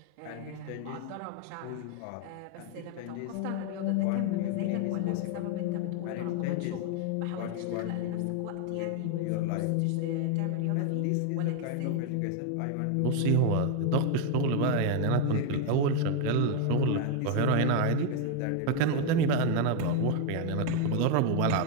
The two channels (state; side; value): different; both; correlation 0.01